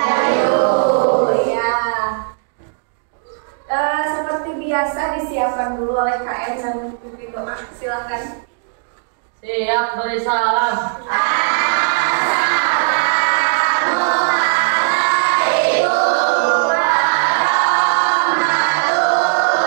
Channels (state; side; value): silent; left; digital silence